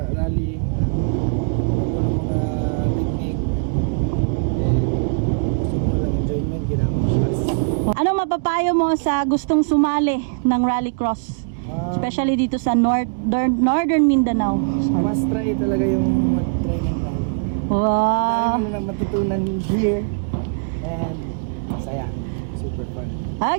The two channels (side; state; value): left; quieter; 38.8 dB